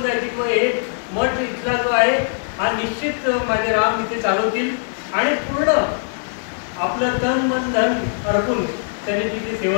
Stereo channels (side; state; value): right; silent; 65 dB below the other